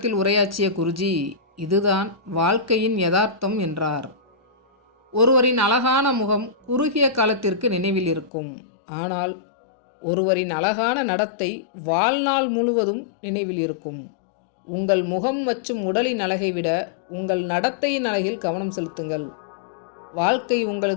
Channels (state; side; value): drops out; right; at 8.3 s